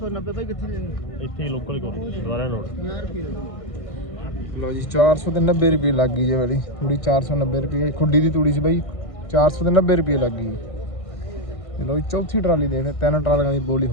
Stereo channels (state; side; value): late; right; 1.6 ms